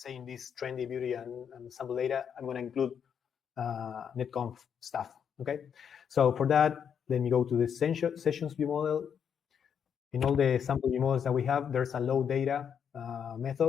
this trendy beauty and sample data, I'm going to include NetConf stuff, okay? So for that, let me go to the sessions view model. In all the sample view models that we have, there's a load data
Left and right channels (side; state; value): right; quieter; 7.7 dB